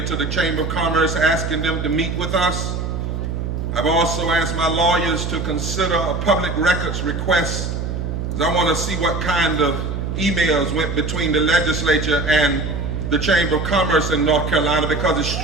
to the Chamber of Commerce asking them to meet with us. I've also asked my lawyers to consider a public records request, because I want to see what kind of emails went between the legislature and the Chamber of Commerce in North Carolina, because it's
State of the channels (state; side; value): noise; right; hum, 3 dB below the sound